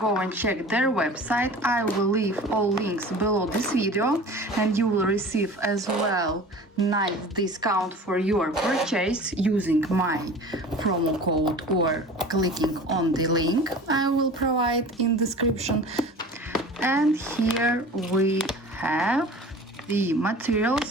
and check their website. I will leave all links below this video, and you will receive as well nice discount for your purchase using my promo code or clicking on the link I will provide in description. And here we have the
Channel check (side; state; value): both; normal; correlation 0.40